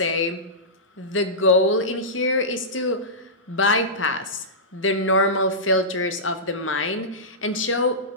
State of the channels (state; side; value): normal; both; correlation -0.16